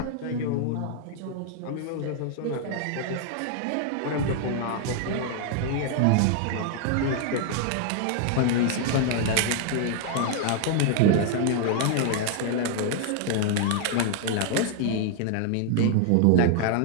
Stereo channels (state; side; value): different; both; correlation 0.00